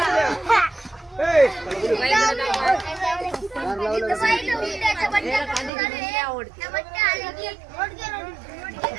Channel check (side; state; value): left; drops out; at 5.7 s